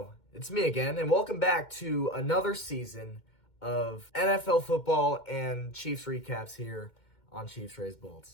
it's me again, and welcome back to another season of NFL football and Chiefs recaps here on Chiefs Raised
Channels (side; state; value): right; late; 2.1 ms